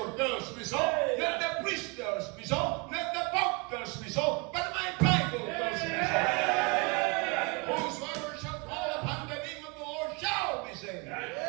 tells me so. Let the priest tells me so. Let the pope tells me so. But my Bible tells me so. Whosoever shall call upon the name of the Lord shall be saved.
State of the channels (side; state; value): left; quieter; 30.6 dB